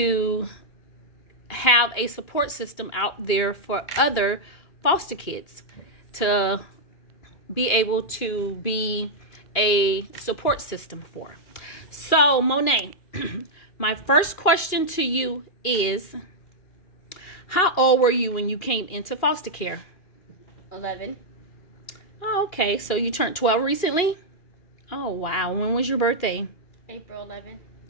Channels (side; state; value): right; late; 2.4 ms